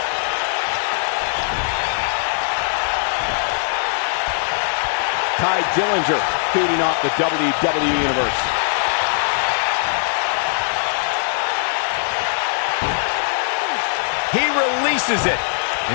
Ty Dillinger feeding off the WWE Universe. He releases it.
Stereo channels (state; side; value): silent; right; digital silence